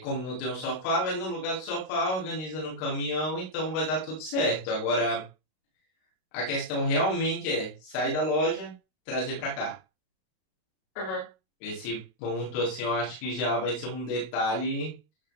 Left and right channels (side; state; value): right; late; 32 ms